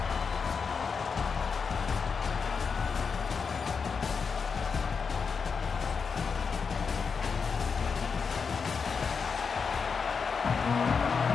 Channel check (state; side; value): quieter; right; 5.6 dB